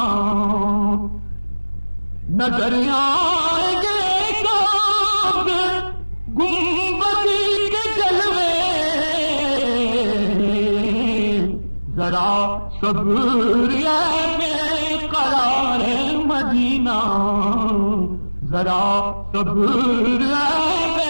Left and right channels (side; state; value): both; inverted; correlation -1.00